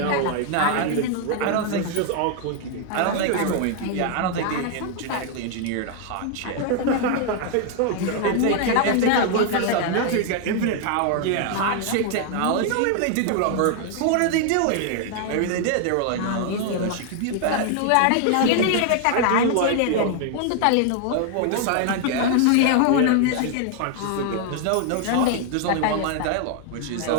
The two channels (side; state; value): both; different; correlation 0.00